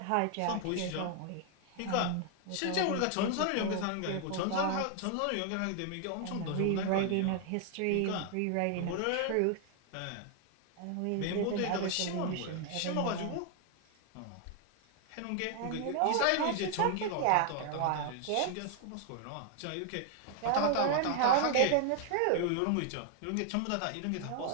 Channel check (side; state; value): both; different; correlation 0.00